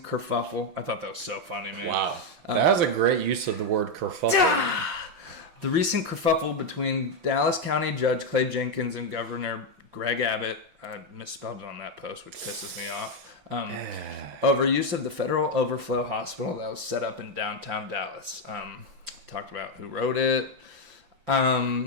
kerfuffle. I thought that was so funny, man. Wow. That was a great use of the word kerfuffle. The recent kerfuffle between Dallas County Judge Clay Jenkins and Governor Greg Abbott, I misspelled it on that post, which pisses me off, over use of the federal overflow hospital that was set up in downtown Dallas. Talked about who wrote it.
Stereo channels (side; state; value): left; late; 5.9 ms